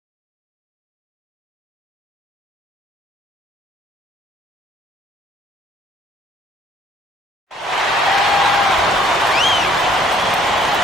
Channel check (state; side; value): normal; both; correlation 0.60